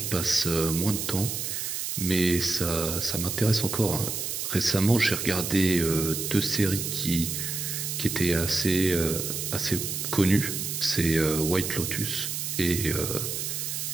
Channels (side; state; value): right; noise; hiss, 3 dB below the sound